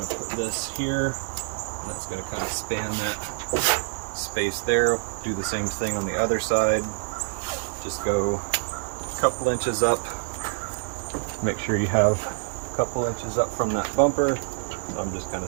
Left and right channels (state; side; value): silent; left; 61 dB below the other